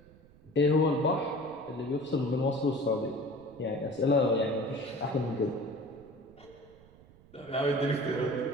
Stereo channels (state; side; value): noise; right; rumble, 25 dB below the sound